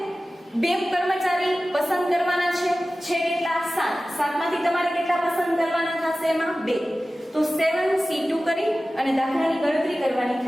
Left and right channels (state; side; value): normal; both; correlation 0.96